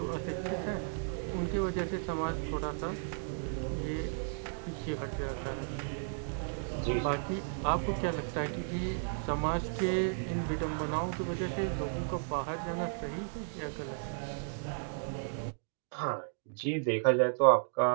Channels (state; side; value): silent; left; digital silence